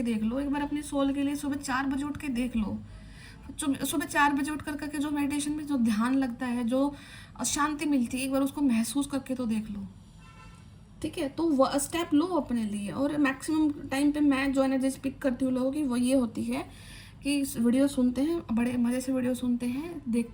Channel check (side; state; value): both; identical; correlation 1.00